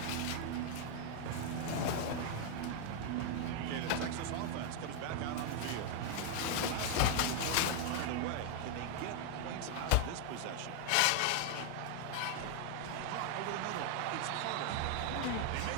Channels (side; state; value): both; different; correlation 0.00